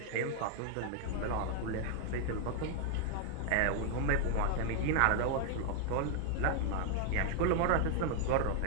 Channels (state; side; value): different; both; correlation 0.00